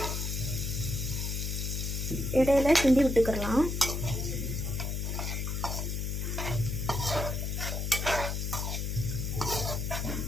இடையில கிண்டி விட்டுக்கலாம்.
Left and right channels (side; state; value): left; noise; hum, 2 dB below the sound